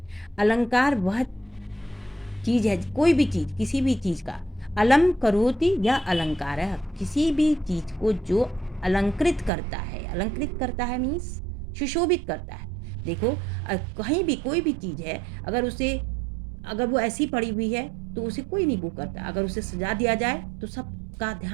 अलंकार वह चीज़ है, कोई भी चीज़, किसी भी चीज़ का अलम करोति या अलंकार है, किसी भी चीज़ को जो अलंकृत करता है मीन्स सुशोभित करता है। देखो कहीं भी कोई भी चीज़ है, अगर वो ऐसी पड़ी हुई है तो उसे कोई नहीं वो करता, अगर उसे सजा दिया जाए तो सबका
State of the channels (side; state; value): left; drops out; at 9.5 s